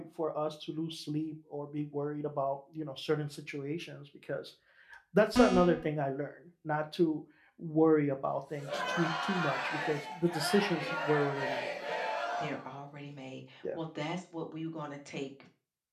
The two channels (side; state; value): both; identical; correlation 1.00